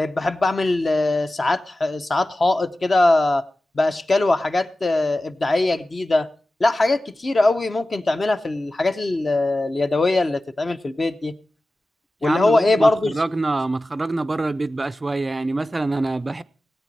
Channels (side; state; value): both; normal; correlation 0.95